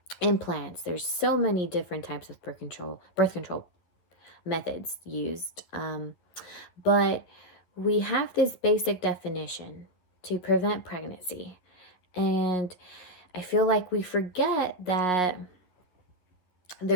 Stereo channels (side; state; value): right; late; 11 ms